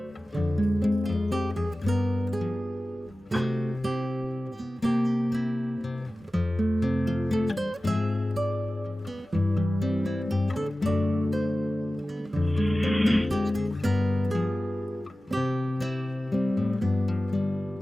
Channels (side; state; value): both; normal; correlation 0.96